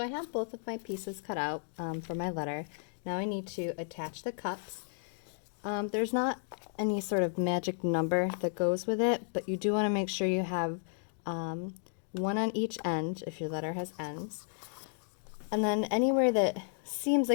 have both of my pieces cut out for my letter. Now I need to attach the cups. There's not any sort of magic number that goes with it, but you do want to make sure you have one on each end if your letter has ends. And then anywhere that seems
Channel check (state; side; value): silent; right; digital silence